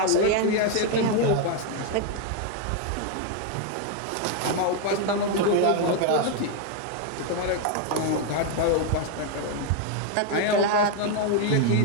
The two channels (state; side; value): different; both; correlation 0.01